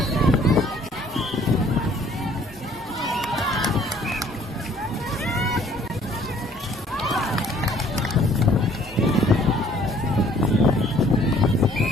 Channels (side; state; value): both; normal; correlation 0.58